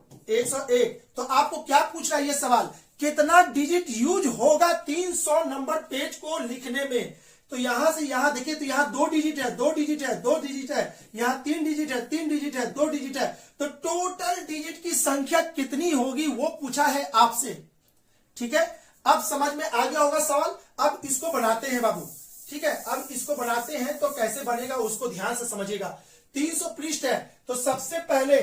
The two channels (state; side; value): identical; both; correlation 1.00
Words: 101। तो आपको क्या पूछ रहा है ये सवाल, कितना डिजिट यूज होगा 300 नंबर पेज को लिखने में। तो यहां से यहां देखिए, तो यहां 2 डिजिट है, 2 डिजिट है, 2 डिजिट है, यहां 3 डिजिट है, 3 डिजिट है, 2 डिजिट है। तो टोटल डिजिट की संख्या कितनी होगी वो पूछा है आपसे। ठीक है, अब समझ में आ गया होगा सवाल। अब इसको बनाते हैं बाबू। ठीक है, अब इसको बनाते हैं तो कैसे बनेगा उसको ध्यान से समझिएगा। 300 पृष्ठ है, तो सबसे पहले